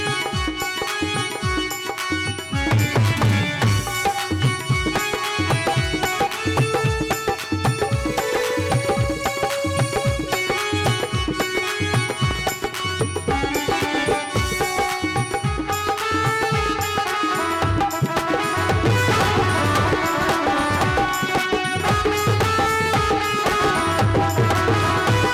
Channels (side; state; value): both; identical; correlation 1.00